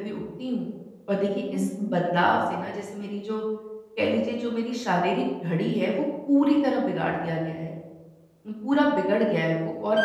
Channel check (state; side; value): identical; both; correlation 1.00